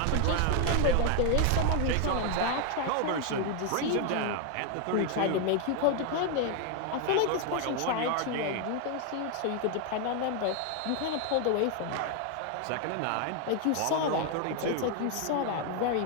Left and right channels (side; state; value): both; different; correlation 0.01